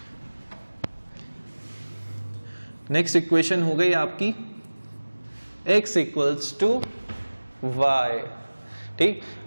नेक्स्ट इक्वेशन हो गई आपकी x इक्वल्स टू वाई, ठीक।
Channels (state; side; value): inverted; both; correlation -1.00